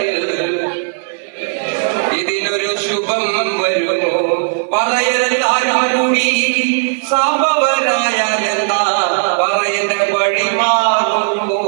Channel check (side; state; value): left; silent; 69 dB below the other